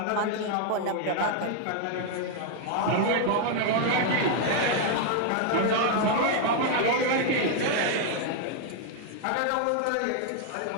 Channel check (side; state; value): both; different; correlation 0.00